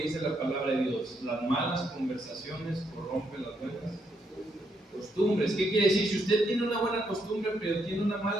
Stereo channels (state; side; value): normal; both; correlation 0.76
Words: dice la palabra de Dios: las malas conversaciones corrompen las buenas costumbres. ¿Qué quiere decir? Si usted tiene una buena costumbre pero tiene una